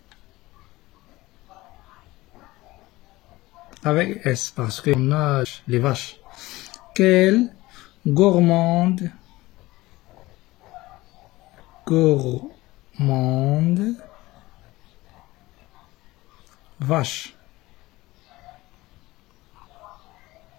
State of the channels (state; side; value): quieter; right; 19.0 dB